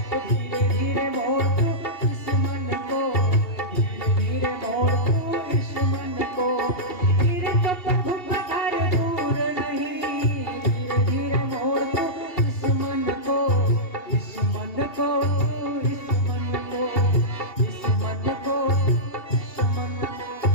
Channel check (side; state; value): right; late; 2.8 ms